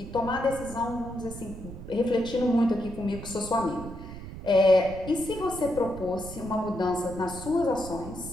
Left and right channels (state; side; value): noise; right; rumble, 11 dB below the sound